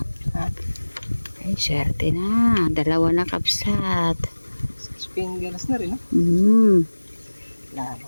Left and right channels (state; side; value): inverted; both; correlation -1.00